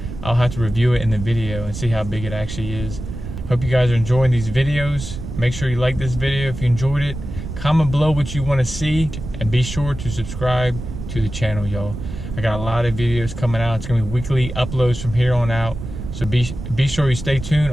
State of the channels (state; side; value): noise; right; rumble, 8 dB below the sound